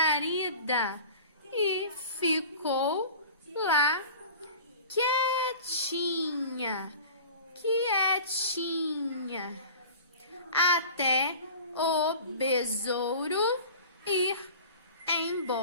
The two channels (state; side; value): inverted; both; correlation -0.40